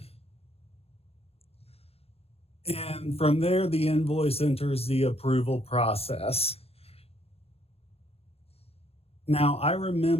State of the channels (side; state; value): right; late; 0.29 ms